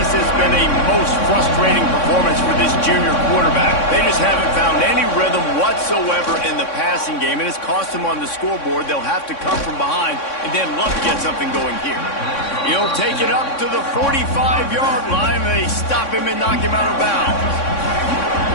has been a most frustrating performance for this junior quarterback. They just haven't found any rhythm whatsoever in the passing game, and it's cost them on the scoreboard. They'll have to come from behind and then look to get something going here. He'll take it up to the 45-yard line, and they stop him and knock him out of bounds.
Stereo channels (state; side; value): late; right; 3.6 ms